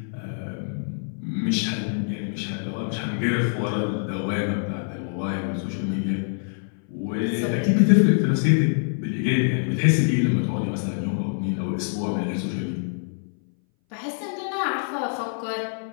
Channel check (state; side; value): silent; right; 60 dB below the other